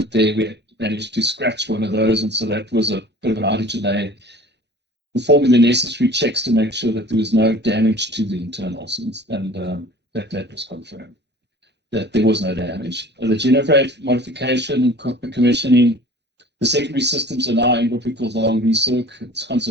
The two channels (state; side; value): normal; both; correlation 0.45